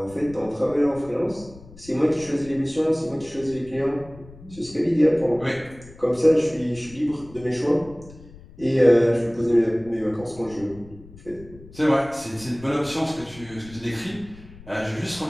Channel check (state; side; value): noise; left; rumble, 20 dB below the sound